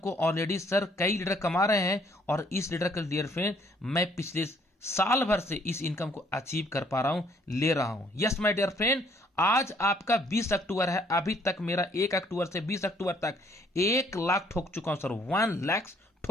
ऑलरेडी सर कई लीडर कमा रहे हैं और इस लीडर के डियर फ्रेंड मैं पिछले साल भर से इस इनकम को अचीव कर पा रहा हूं, ले रहा हूं। यस माय डियर फ्रेंड, आज आपका 20 अक्टूबर है, अभी तक मेरा 1 अक्टूबर से 20 अक्टूबर तक 1 लाख ठोक चुका हूं सर, 1 लाख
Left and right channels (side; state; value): both; normal; correlation 0.64